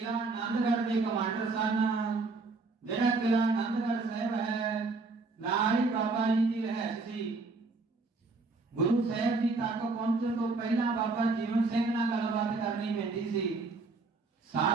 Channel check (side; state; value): left; quieter; 3.8 dB